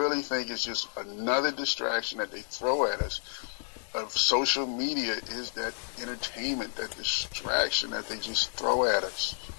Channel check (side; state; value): right; silent; digital silence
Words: think it's just another distraction that they throw at us. Of social media is that entertainment, that distraction that they just throw at us.